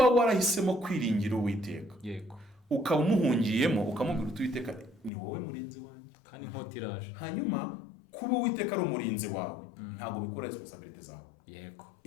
warahisemo kwiringira Uwiteka, yego, ukaba umuhungiyemo ukamubwira Uwiteka ni wowe murinzi wanjye, kandi inkota iraje, hanyuma kuba Uwiteka ari umurinzi wawe, ntabwo bikora responsibility zawe. yego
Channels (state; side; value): drops out; right; at 5.1 s